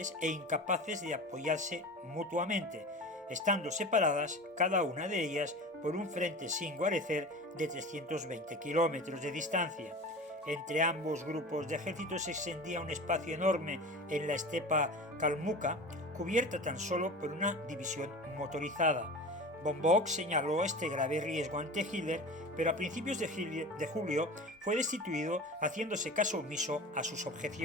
e incapaces de apoyarse mutuamente, estando separadas cada una de ellas por un frente sin guarecer de 320 kilómetros de distancia. Entre ambos grupos de ejércitos se extendía un espacio enorme en la estepa calmuca, cubierta tan solo por una división motorizada. Von Bock señaló este grave riesgo ante Hitler, pero a principios de julio fue destituido, haciéndose caso omiso a sus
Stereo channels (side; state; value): both; normal; correlation 0.33